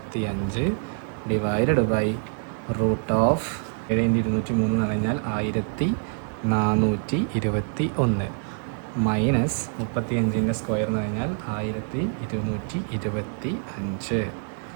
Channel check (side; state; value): left; silent; 61 dB below the other